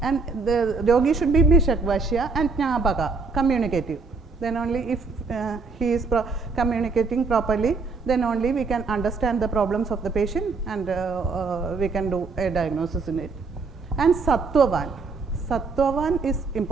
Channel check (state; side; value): quieter; left; 4.3 dB